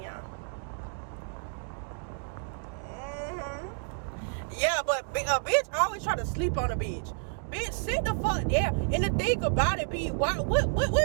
y'all. Yeah, but a bitch always try to sleep on a bitch. Bitch, sit the fuck down. And the thing about it be, what be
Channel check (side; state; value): left; silent; 58 dB below the other